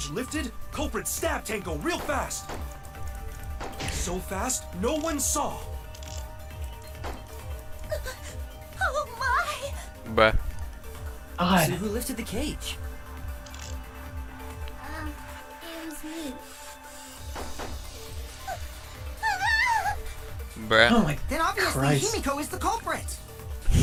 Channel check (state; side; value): identical; both; correlation 1.00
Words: lifted, culprit stabbed Tenko real fast. So fast, no one saw. Oh my! Bruh. So who lifted the cage? It was me. Bruh. Oh my Then obviously Christ. Himiko is the culprit.